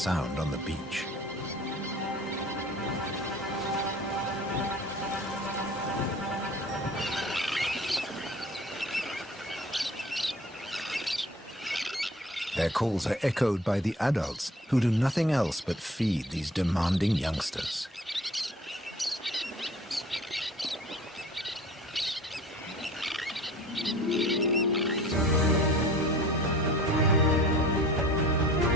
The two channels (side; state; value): both; normal; correlation 0.46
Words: on the beach. Their calls are echoed by the adults, who do nothing else but feed these demanding youngsters.